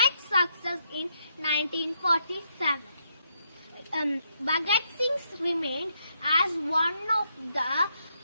success in 1947. Bhagat Singh remained as one of the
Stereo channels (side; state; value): both; inverted; correlation -0.78